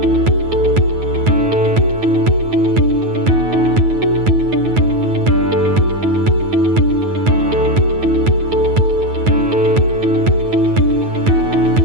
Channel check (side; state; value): left; late; 9.4 ms